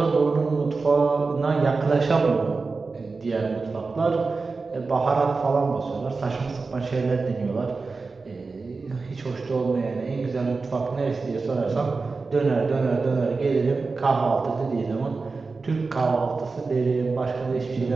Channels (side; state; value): left; quieter; 4.1 dB